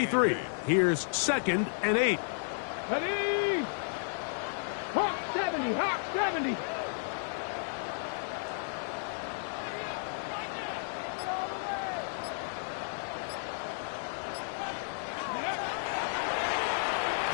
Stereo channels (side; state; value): right; silent; digital silence